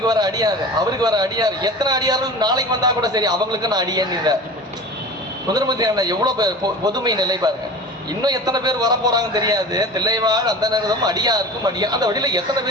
வர அடியாரு, அவருக்கு வர அடியாரு, எத்தனை அடியார்கள் நாளைக்கு வந்தா கூட சரி அவங்களுக்கு நான் அடியேன்னு. சுந்தரமூர்த்தி நாயனார் எவ்வளவு பொதுமை நிலை பாருங்க. இன்னும் எத்தனை பேர் வர போறாங்கன்னு தெரியாது. தில்லைவாழ் அந்த நேரம் அடியாருக்கும் அடியா, அந்த வழியில எத்தனை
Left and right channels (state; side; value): normal; both; correlation 0.36